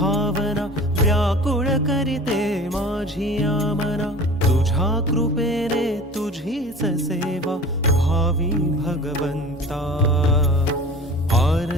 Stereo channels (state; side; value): normal; both; correlation 0.40